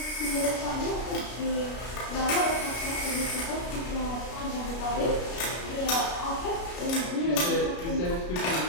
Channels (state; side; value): late; right; 33 ms